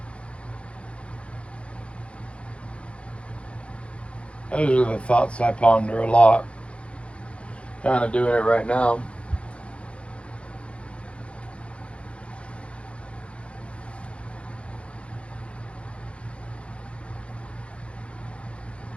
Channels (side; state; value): right; late; 0.060 ms